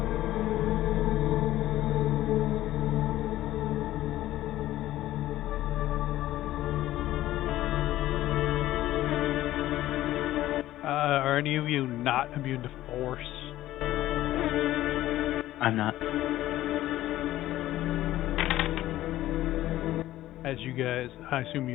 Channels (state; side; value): quieter; right; 14.7 dB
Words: Are any of you not immune to force? I'm not. As you guys, I assume